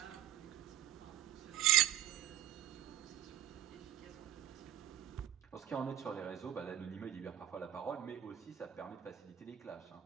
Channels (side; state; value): left; quieter; 11.9 dB